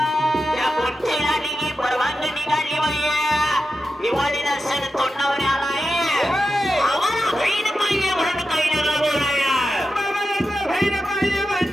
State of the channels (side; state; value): both; normal; correlation 0.90